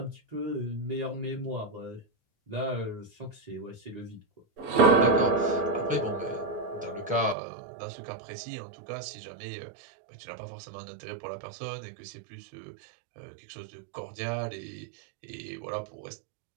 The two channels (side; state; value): left; drops out; at 7.4 s